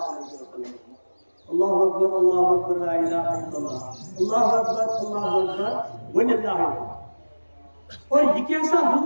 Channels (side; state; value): both; inverted; correlation -1.00